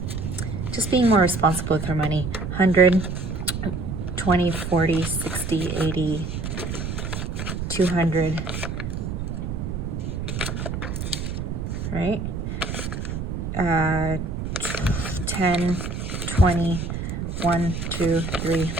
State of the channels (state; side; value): noise; right; rumble, 4 dB below the sound